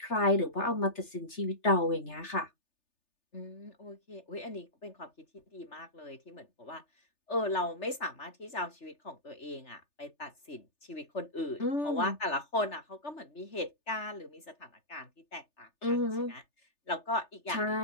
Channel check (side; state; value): right; late; 3.3 ms